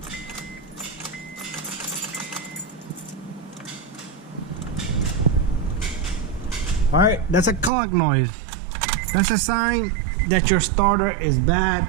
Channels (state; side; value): drops out; left; at 7.7 s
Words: All right, that's a clunk noise. That's a sign that your starter is bad.